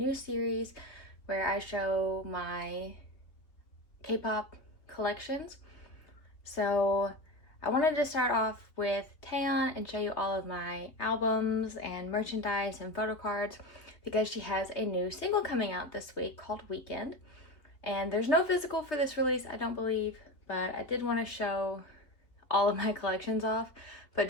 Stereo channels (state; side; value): late; right; 3.3 ms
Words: series where I show my K-pop collections. So I wanted to start off with Taeyeon and show you all of my albums and merchandise and photo cards because she has a new single coming out this week called Weekend. And there's no physical for this release, I don't believe, but I did want to show all of my collections off. But